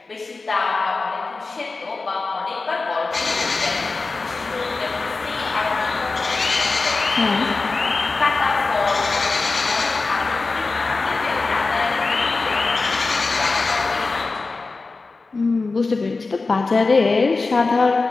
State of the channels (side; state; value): right; quieter; 3.8 dB